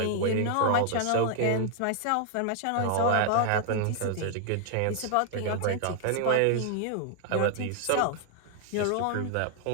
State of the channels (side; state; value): both; different; correlation 0.00